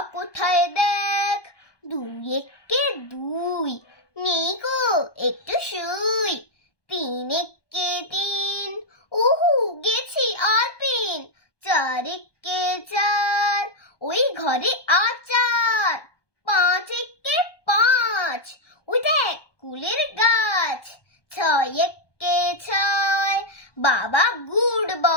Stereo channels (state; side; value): late; right; 1.2 ms